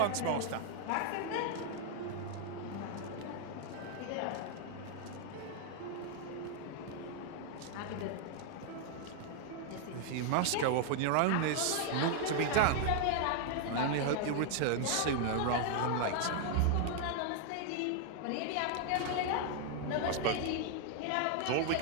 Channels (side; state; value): both; different; correlation 0.00